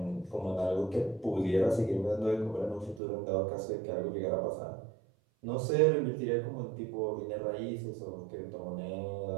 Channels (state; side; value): drops out; left; at 3.0 s